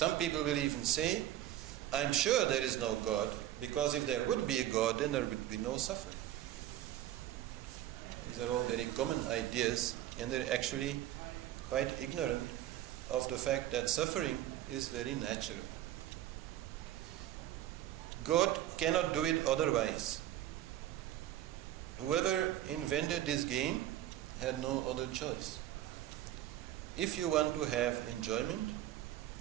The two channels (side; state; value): left; quieter; 12.9 dB